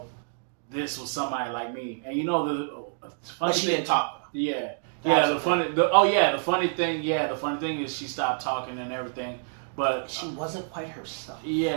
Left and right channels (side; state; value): left; silent; digital silence